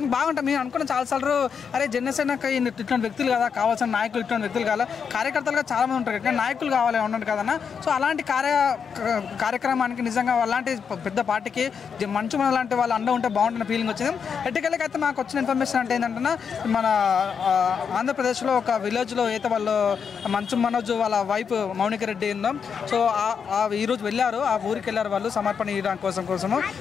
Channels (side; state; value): right; quieter; 6.6 dB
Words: బాగుంటుంది. మేము అనుకున్న చాలాసార్లు అరే జనసేనకి ఇట్లాంటి వ్యక్తులు కదా కావాల్సిన నాయకులు, ఇట్లాంటి వ్యక్తులు కావాలి, కార్యకర్తలుగా చాలామంది ఉంటారు కానీ నాయకులు కావాలి ఉండండి కదన్న. సో అలాంటి కార్యక్రమానికి నిజంగా అలాంటి పెద్ద పార్టీకి మంచు మన లాంటి వాళ్ళు అండ ఉంటే బాగుంటున్న ఫీలింగ్ వచ్చింది. ఎట్టుకెళ్ళకి అయితే మాకు వచ్చిన ఇన్ఫర్మేషన్ అంటే ఏంటంటే, మన ఆంధ్రప్రదేశ్లో ఒక విలేజ్లో అయితే వాళ్ళు మంచు మనోజ్ వాళ్ళ వైఫ్ మౌనిక రెడ్డి ఉందో, సో ఈరోజు వెళ్ళారు, ఆ ఊరికి వెళ్ళారు వాళ్ళు సమర్పణ ఇవ్వడానికి కోసము.